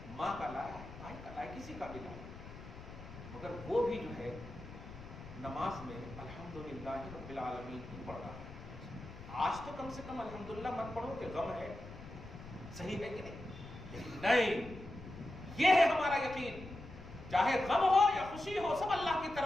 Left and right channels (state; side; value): noise; left; rumble, 14 dB below the sound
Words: ماں کا لایا ہے، بھائی کا لایا، کسی کا بھی لایا، مگر وہ بھی جو ہے نماز میں الحمدللہ رب العالمین ہی پڑھ رہا ہے. آج تو کم سے کم الحمدللہ مت پڑھو کہ غم ہے، صحیح ہے کہ نہیں؟ لیکن نہیں، یہ ہے ہمارا یقین، چاہے غم ہو یا خوشی ہو سب اللہ کی